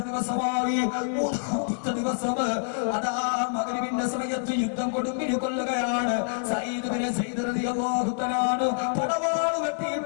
ദിവസമായി 3-ാമത്തെ ദിവസം അതാ മഗ്രിബിന്റെ സമയത്ത് യുദ്ധം കൊടുമ്പിരി കൊല്ലുകയാണ് സയ്യിദ് റളിയല്ലാഹു തആല പടവാൾ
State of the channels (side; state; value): right; silent; 60 dB below the other